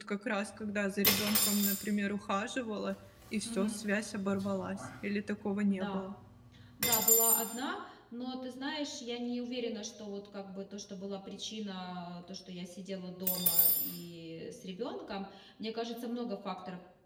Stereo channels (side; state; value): both; identical; correlation 1.00